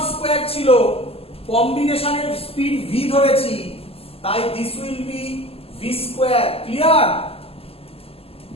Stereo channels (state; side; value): late; right; 0.28 ms